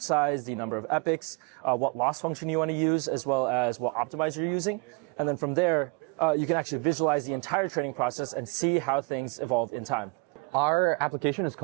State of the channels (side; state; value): left; quieter; 29.8 dB